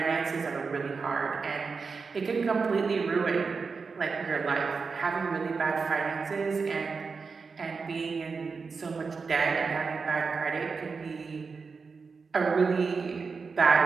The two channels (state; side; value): quieter; left; 4.9 dB